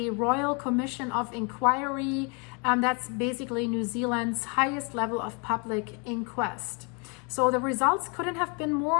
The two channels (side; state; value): right; quieter; 34.1 dB